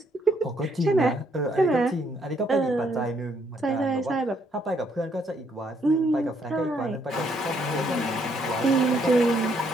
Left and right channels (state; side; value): normal; both; correlation 0.70